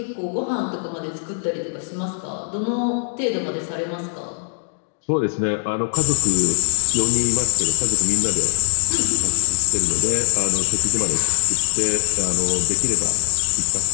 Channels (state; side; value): silent; right; digital silence